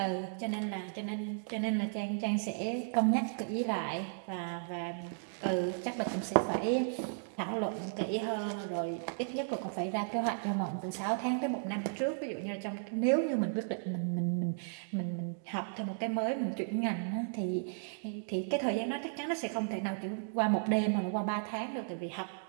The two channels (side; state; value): left; silent; digital silence